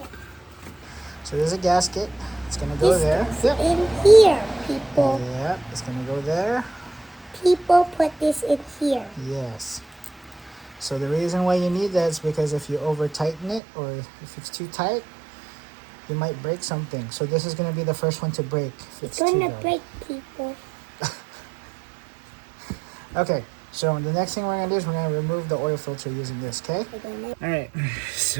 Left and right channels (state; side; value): drops out; left; at 13.6 s